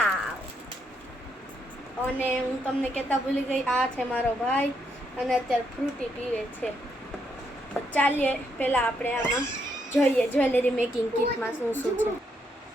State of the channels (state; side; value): normal; both; correlation 0.77